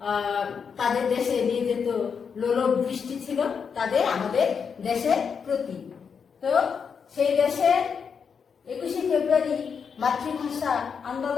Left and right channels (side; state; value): right; quieter; 6.4 dB